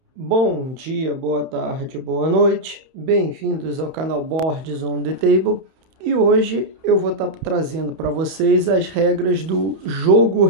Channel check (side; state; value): left; late; 31 ms